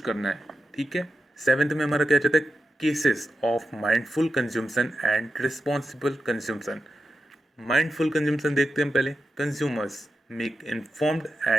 करना है। ठीक है। सेवेंथ में हमारा क्या चाहता है? Cases of mindful consumption and responsible consumption. Mindful consumption देखते हैं हम पहले। Consumers make informed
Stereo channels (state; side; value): normal; both; correlation 0.89